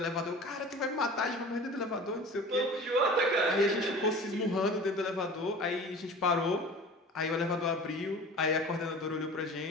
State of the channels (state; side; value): normal; both; correlation 0.40